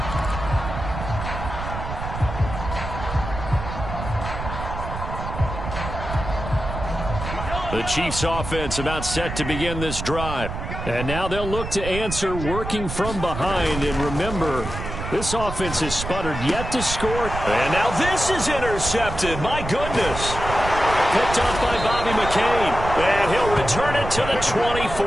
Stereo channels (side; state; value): right; noise; rumble, 7 dB below the sound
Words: The Chiefs offense about set to begin this drive. And now they'll look to answer working from behind. And remember, this offense has sputtered yet to score. And now this is intercepted. My goodness. Picked off by Bobby McCain. And he'll return it to the